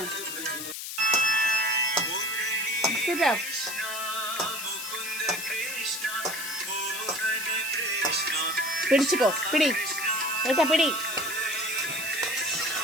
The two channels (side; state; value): left; noise; hiss, 7 dB below the sound